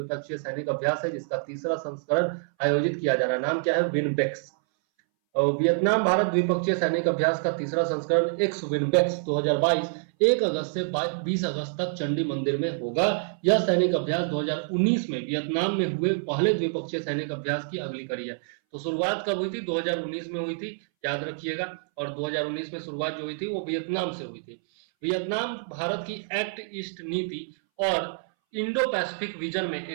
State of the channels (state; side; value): silent; left; 60 dB below the other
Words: सैनिक अभ्यास है जिसका तीसरा संस्करण आयोजित किया जा रहा है। नाम क्या है? विनबेक्स। और वियतनाम भारत द्विपक्षीय सैनिक अभ्यास का तीसरा संस्करण एक्स विनबेक्स 2022 1 अगस्त से 20 अगस्त तक चंडी मंदिर में होगा। यह सैनिक अभ्यास 2019 में वियतनाम में हुए पहले द्विपक्षीय सैनिक अभ्यास की अगली कड़ी है। तो शुरुआत कब हुई थी? 2019 में हुई थी, याद रखिएगा। और 2019 में शुरुआत जो हुई थी वो वियतनाम से हुई थी। वियतनाम भारत की एक्ट ईस्ट नीति और इंडो पैसिफिक विजन में